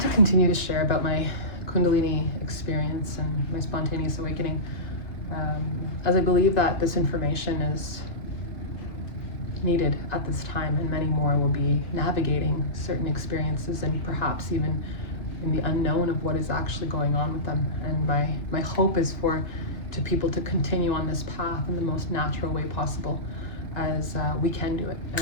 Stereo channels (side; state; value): right; late; 2.0 ms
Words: to continue to share about my Kundalini experience and my spontaneous awakening, as I believe that this information is needed at this time, and many more will be navigating certain experiences and perhaps even in the unknown of what is actually going on with them. And my hope is for people to continue on this path in the most natural way possible, as we can do it.